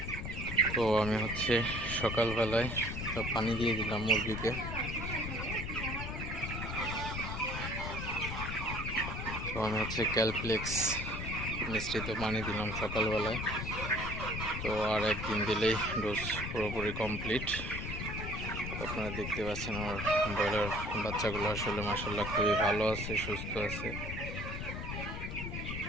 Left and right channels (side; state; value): left; noise; rumble, 5 dB below the sound